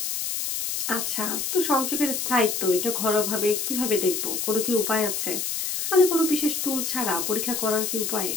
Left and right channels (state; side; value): noise; left; hiss, 2 dB below the sound